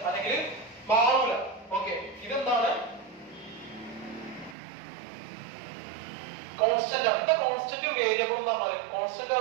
അല്ലെങ്കിൽ മാറൂല. ഓക്കെ, ഇതെന്താണ്? കോൺസ്റ്റന്റ് ആണ്. എന്താ കോൺസ്റ്റന്റും വേരിയബിളും എന്ന് പറഞ്ഞാൽ? കോൺസ്റ്റന്റ്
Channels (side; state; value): left; drops out; at 4.5 s